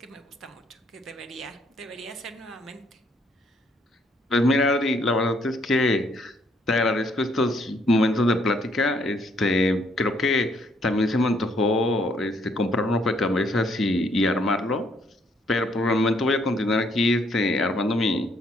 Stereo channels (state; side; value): normal; both; correlation 0.69